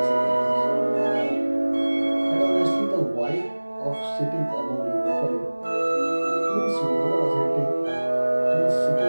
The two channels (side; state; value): both; inverted; correlation -1.00